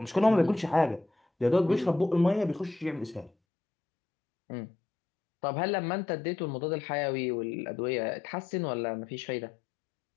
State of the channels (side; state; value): right; drops out; at 3.3 s